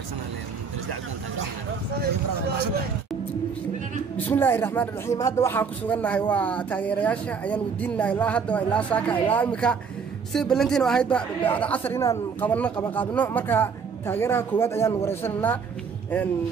Dirisla Cabdi بسم الله الرحمن الرحيم هذا waxaan ku suganahay waa taageerayaasha ayaan wadiinahay ilaa hadda ilaa saaka ilaa imika si balantiin oo ahayd bacda casar inaan qabanno marka taageeraha koowaad ayaan wareysanaa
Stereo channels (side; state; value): left; quieter; 5.8 dB